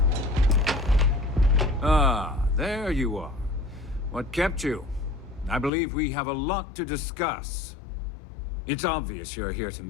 Ah, there you are. What kept you? I believe we have a lot to discuss. It's obvious you're here to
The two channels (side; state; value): right; drops out; at 5.7 s